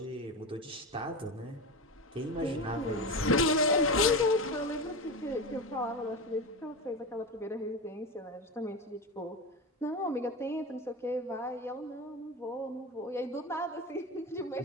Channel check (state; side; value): normal; both; correlation 0.22